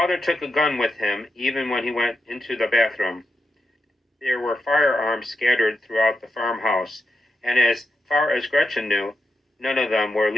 took a gun with him even when he went into the bathroom. There were firearms scattered throughout the farmhouse, and as far as Gretchen knew, none of them were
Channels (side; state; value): both; normal; correlation 0.87